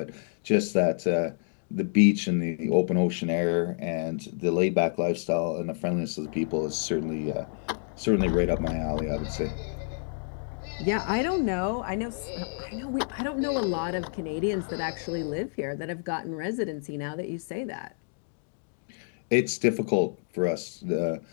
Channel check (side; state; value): right; silent; digital silence